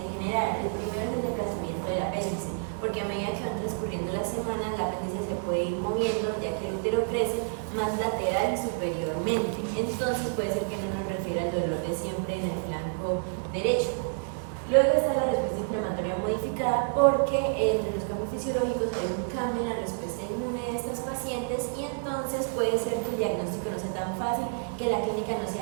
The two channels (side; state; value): left; silent; digital silence